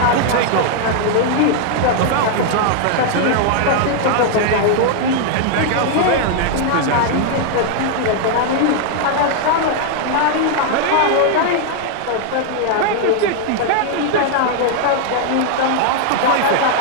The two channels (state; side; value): different; both; correlation 0.00